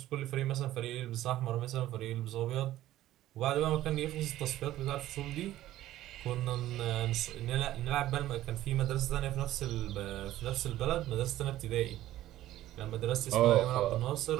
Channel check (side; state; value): left; quieter; 14.3 dB